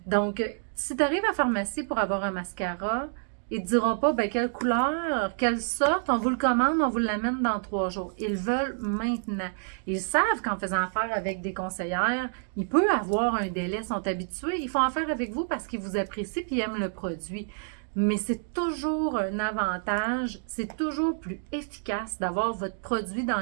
Donc, si tu arrives à la pharmacie pour avoir un mascara, ils ne te diront pas ben, quelle couleur, quelle sorte, on vous le commande, on vous l'amène dans 3 jours. Ils veulent maintenant. Ils savent qu'en faisant affaire avec des conseillères, il peut avoir un délai, ils sont habitués. Ils font affaire avec vous parce qu'ils vous apprécient et aiment le produit. Mais c'est toujours un avantage, c'est toujours plus efficace d'avoir votre produit dans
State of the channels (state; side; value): silent; left; digital silence